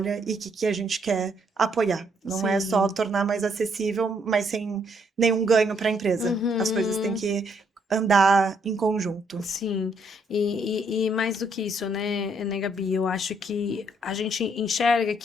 e que a gente quer apoiar. Não é só tornar mais acessível, mas sem nenhum ganho para a empresa. As coisas têm que andar em conjunto. Sim, e mais do que isso, né, Gabi? Eu acho que a gente enxerga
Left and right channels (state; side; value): normal; both; correlation 0.71